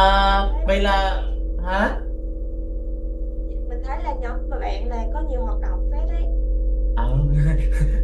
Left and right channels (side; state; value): both; identical; correlation 1.00